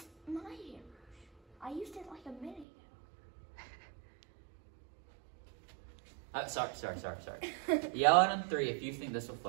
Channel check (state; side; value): drops out; left; at 2.7 s